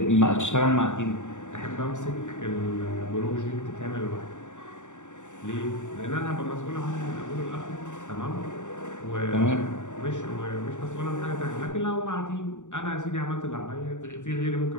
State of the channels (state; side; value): late; right; 0.85 ms